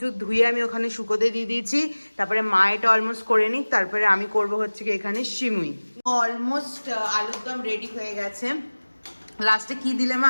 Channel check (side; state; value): both; inverted; correlation -1.00